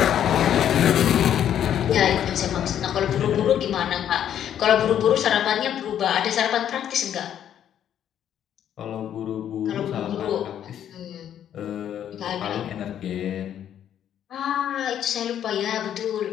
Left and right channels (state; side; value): quieter; right; 10.1 dB